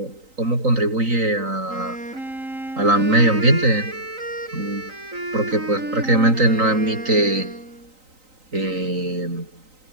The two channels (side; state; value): left; late; 3.9 ms